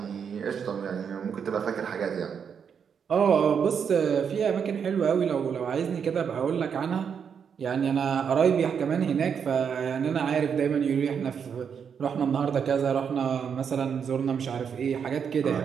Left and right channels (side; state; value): left; quieter; 7.1 dB